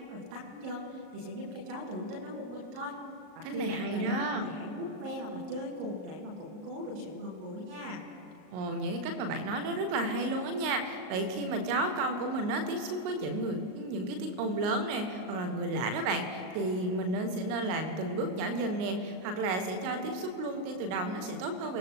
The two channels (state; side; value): late; left; 38 ms